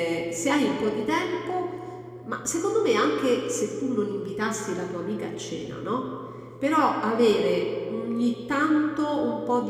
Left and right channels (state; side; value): identical; both; correlation 1.00